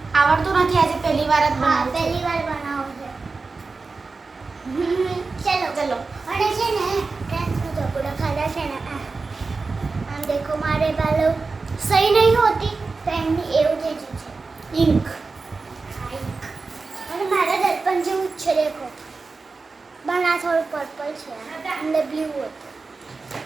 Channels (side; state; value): left; quieter; 4.1 dB